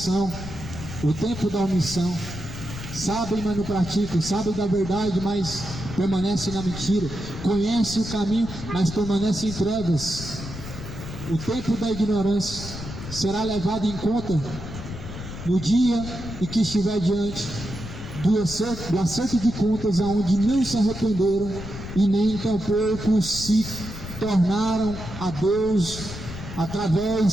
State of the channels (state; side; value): noise; left; rumble, 10 dB below the sound